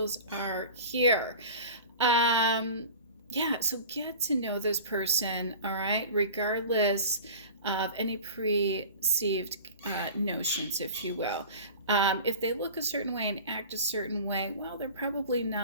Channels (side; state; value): both; inverted; correlation -0.38